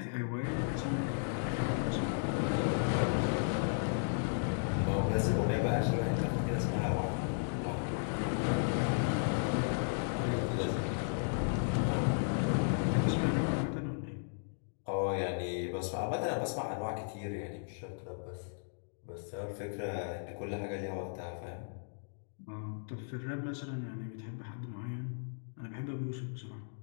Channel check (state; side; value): silent; right; digital silence